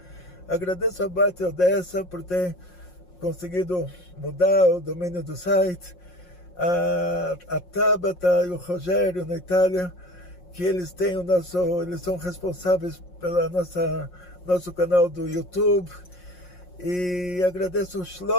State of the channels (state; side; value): late; right; 5.6 ms